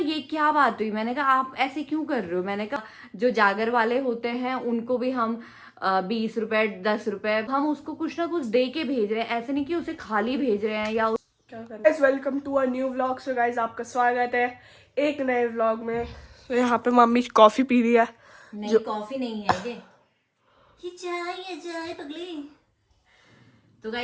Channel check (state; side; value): identical; both; correlation 1.00